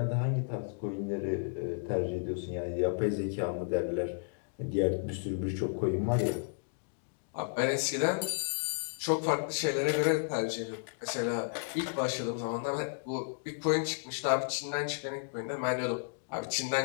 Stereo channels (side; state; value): right; silent; digital silence